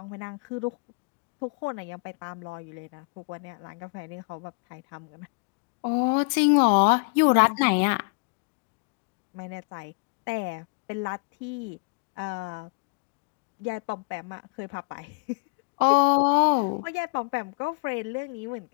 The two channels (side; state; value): right; quieter; 35.3 dB